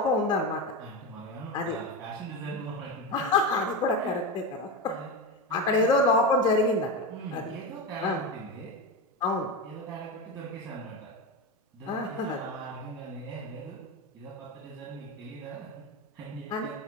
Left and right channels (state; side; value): normal; both; correlation 0.18